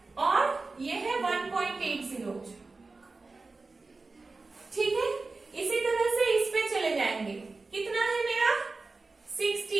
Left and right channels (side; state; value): left; quieter; 3.7 dB